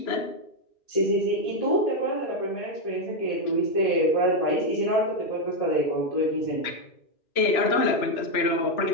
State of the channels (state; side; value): late; right; 2.9 ms